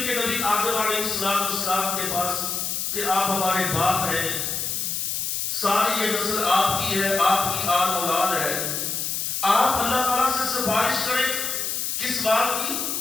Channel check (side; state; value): left; noise; hiss, 1 dB below the sound